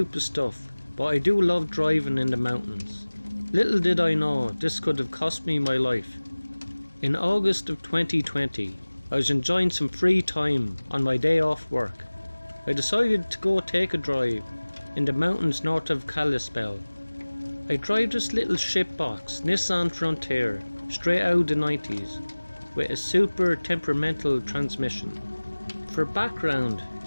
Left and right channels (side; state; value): both; inverted; correlation -1.00